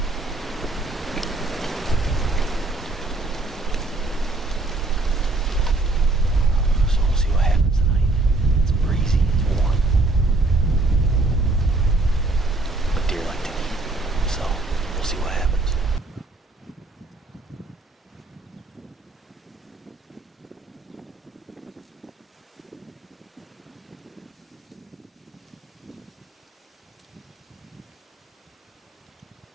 So we'll see what happens tonight. It's breezy, it's warm. But deer like to eat, so we'll see what happens.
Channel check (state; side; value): quieter; left; 3.0 dB